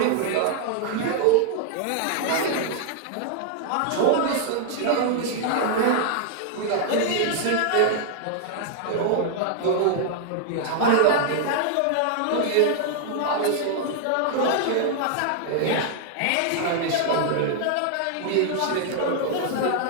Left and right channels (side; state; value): both; different; correlation -0.01